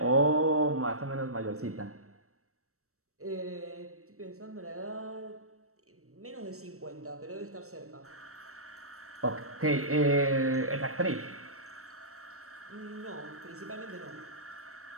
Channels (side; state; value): left; late; 0.64 ms